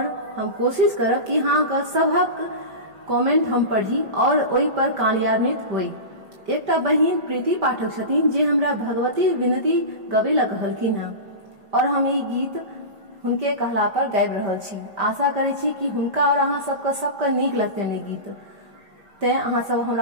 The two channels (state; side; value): late; left; 5.1 ms